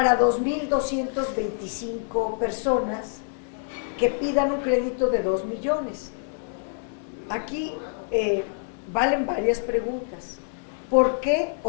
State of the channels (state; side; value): silent; right; 61 dB below the other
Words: 2,225 personas que pidan un crédito de 2 millones. Aquí valen varias preguntas. ¿Por qué